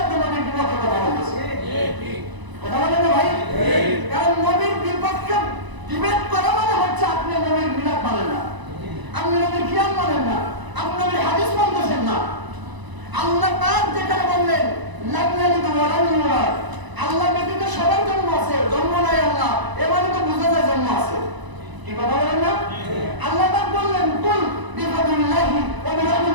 আপনি নবীর বিপক্ষে কথা বলতেছেন। কথা বলেন না ভাই? কারণ নবীর বিপক্ষে ডিবেট করা মানে হচ্ছে আপনি নবীর মিলাদ মানেন না, আপনি নবীর কিয়াম মানেন না, আপনি নবীর হাদিস মানতেছেন না। আল্লাহ পাক যেখানে বললেন লাগনালিকা ওয়ালাল্লাহ, আল্লাহ ব্যতীত সবার জন্ম আছে, জন্ম নাই আল্লাহ, এবারে তো বুঝা যায় জন্ম আছে। কি কথা বলেন না? আল্লাহ পাক বললেন কুল বিফাদিল্লাহি ওয়া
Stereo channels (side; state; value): left; late; 1.0 ms